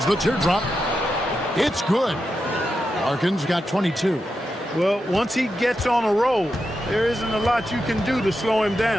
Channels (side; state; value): both; normal; correlation 0.88